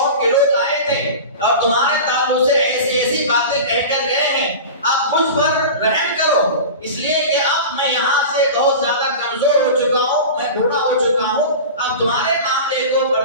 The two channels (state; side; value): inverted; both; correlation -0.31